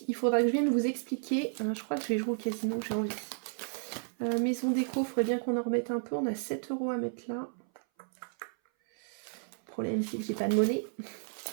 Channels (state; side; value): silent; left; 56 dB below the other